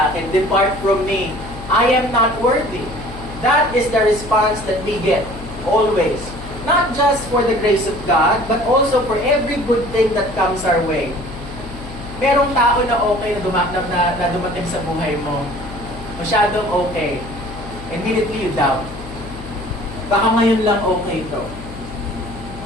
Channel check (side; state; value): left; noise; hum, 13 dB below the sound